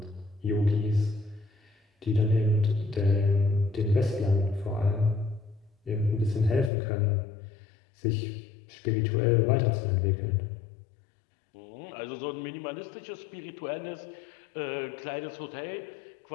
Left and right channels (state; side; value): drops out; right; at 6.7 s